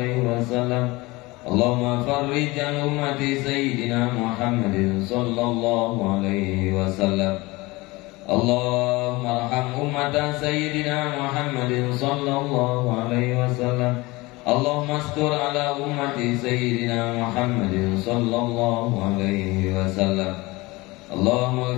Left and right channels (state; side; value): quieter; right; 22.3 dB